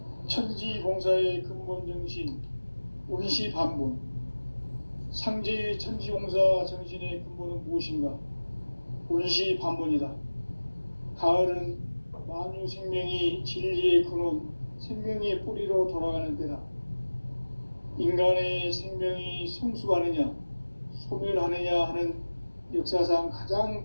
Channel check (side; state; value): both; inverted; correlation -1.00